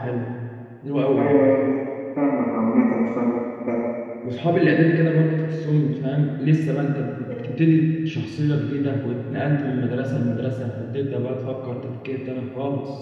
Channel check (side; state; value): both; identical; correlation 1.00